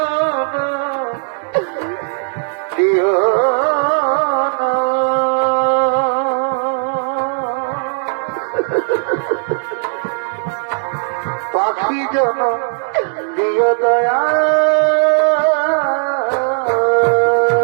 দিও না। পাখি জন দিও দয়া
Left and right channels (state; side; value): silent; left; digital silence